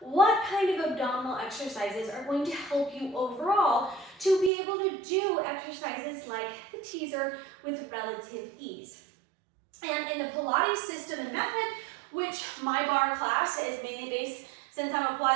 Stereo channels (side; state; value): left; drops out; at 4.5 s